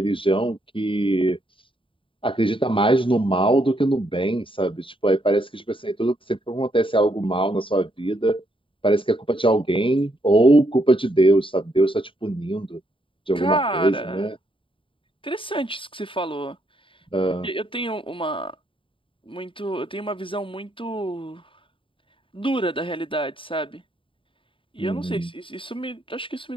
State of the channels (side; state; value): right; late; 0.25 ms